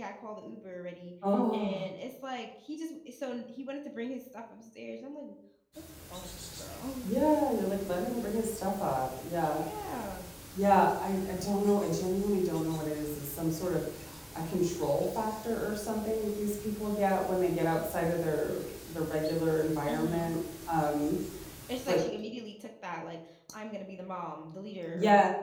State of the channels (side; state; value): both; identical; correlation 1.00